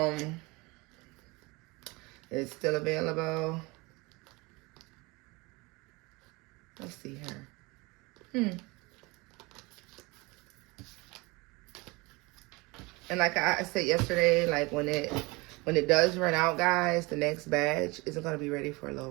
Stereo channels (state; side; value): quieter; left; 25.0 dB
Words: It's still available. Let's see here. And like I said yesterday, like when it does run out, guys, the next batch isn't going to be ready for a